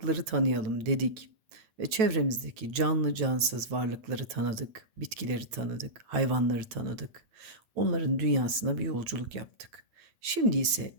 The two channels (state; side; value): late; left; 9.1 ms